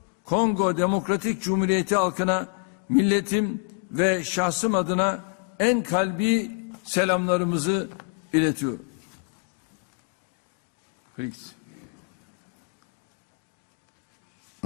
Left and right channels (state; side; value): quieter; right; 39.5 dB